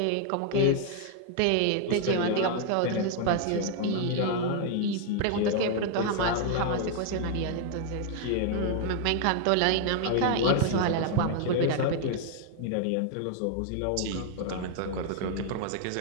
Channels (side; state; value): both; different; correlation 0.00